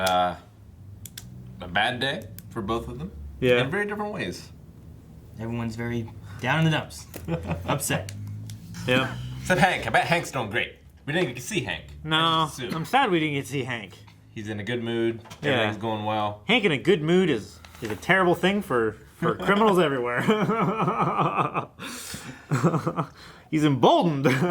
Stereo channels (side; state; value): both; identical; correlation 1.00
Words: bad day for both of them. Yeah. In very different ways. Everyone's very down in the dumps. Upset. Yeah. Except Hank. I bet Hank's doing great. We didn't get to see Hank. No, I just assumed. I'm sad we didn't get to see Hank. He's in a good mood. Yeah. Everything's going well. Hank in a good mood is a terrible thing for criminals everywhere. He's emboldened.